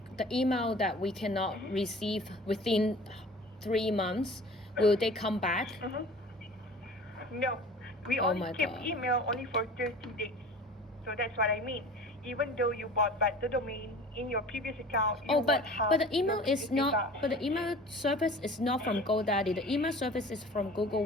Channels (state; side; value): normal; both; correlation 0.42